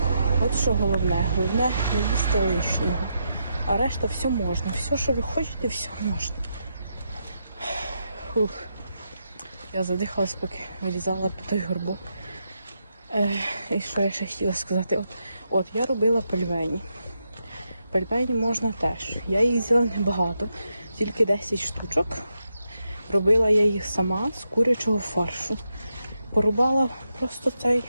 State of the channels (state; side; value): inverted; both; correlation -0.83